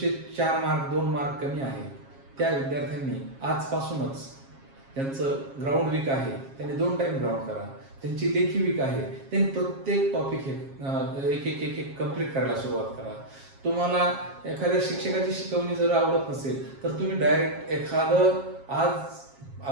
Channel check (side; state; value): left; late; 7.4 ms